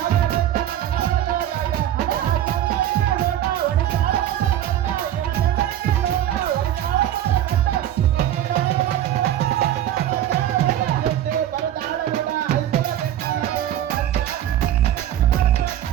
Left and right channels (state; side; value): quieter; left; 11.7 dB